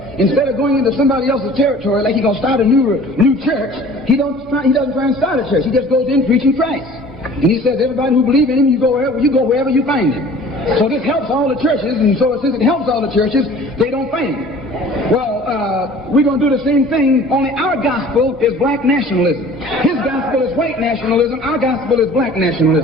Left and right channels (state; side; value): normal; both; correlation 0.47